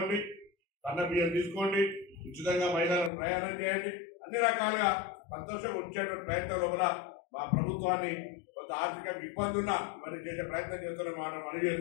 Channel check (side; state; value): right; drops out; at 3.1 s